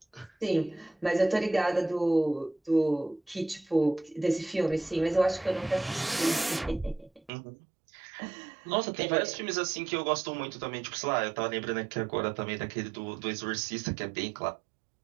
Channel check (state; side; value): drops out; left; at 7.3 s